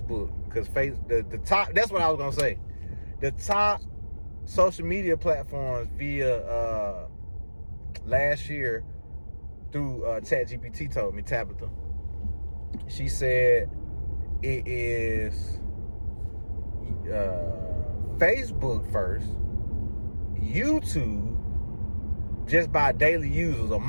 because the top, that's what I was gonna say. The top social media platforms via last year through ChatGPT told me, Tabitha. She said it is Facebook first, YouTube just by daily users or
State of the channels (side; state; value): both; inverted; correlation -1.00